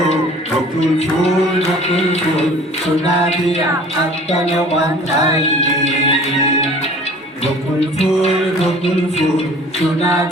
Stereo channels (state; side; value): normal; both; correlation 0.47